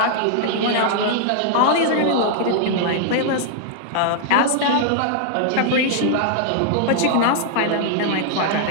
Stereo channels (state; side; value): different; both; correlation -0.01